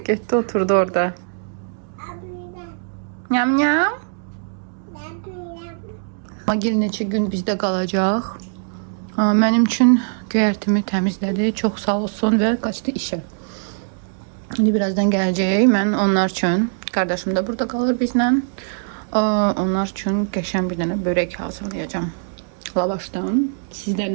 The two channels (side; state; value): left; silent; digital silence